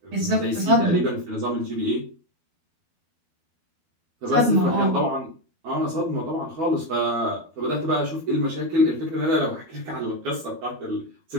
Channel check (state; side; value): late; left; 12 ms